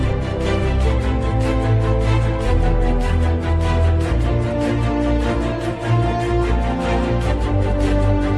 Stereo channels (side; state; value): both; identical; correlation 1.00